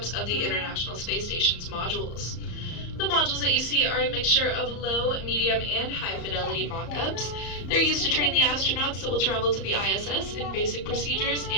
of the International Space Station's modules. The modules that you see are a mixture of low, medium, and high-fidelity mock-ups. They're used to train the astronauts that will travel to the ISS in basic procedures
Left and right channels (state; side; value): late; right; 34 ms